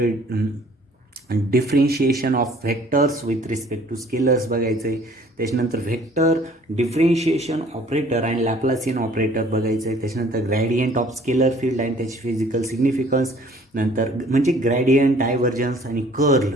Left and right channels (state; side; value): normal; both; correlation 0.55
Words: differentiation of vectors with respect to scalars बघायचं आहे. त्याच्यानंतर vector differentiation operator and Laplacian operator बघायचं आहे. त्याच्यानंतर gradient of scalar field and त्याची फिजिकल सिग्निफिकन्स. नंतर म्हणजे ग्रॅडियंट, डायव्हर्जन्स आणि कर्ल